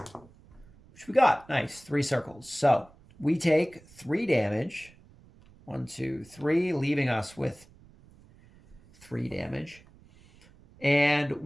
we got. Nice, 3 circles. So, we take 3 damage. 1, 2, 3, leaving us with 3 damage. And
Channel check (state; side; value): noise; right; rumble, 25 dB below the sound